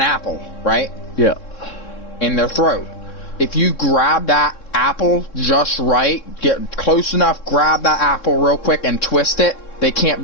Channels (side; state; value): right; late; 3.6 ms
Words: right? Yeah. In their throat. If you grab that apple just right, get close enough, grab that apple real quick and twist it, they can't